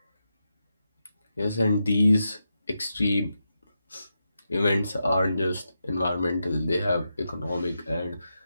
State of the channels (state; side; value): inverted; both; correlation -0.87